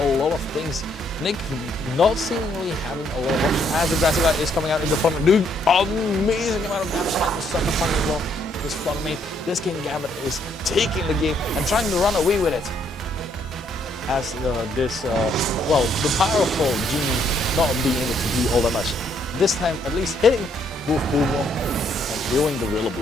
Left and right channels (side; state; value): both; normal; correlation 0.70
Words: lot of things. Nick not seemingly having a lot of options as the Grassy Glide is coming out into Flutter, doing amazing amount of damage and the Sucker Punch as well. This Flutter this King Gambit is taking the game and trying to run away with it. As well, the powerful Genie not being able to do all that much. This time, at least hitting both Pokémon and healing the